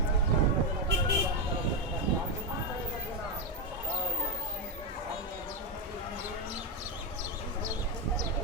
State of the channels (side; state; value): both; normal; correlation 0.06